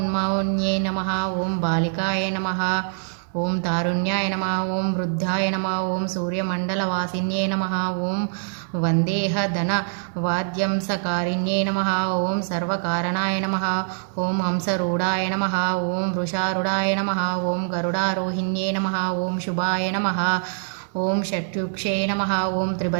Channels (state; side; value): silent; left; 62 dB below the other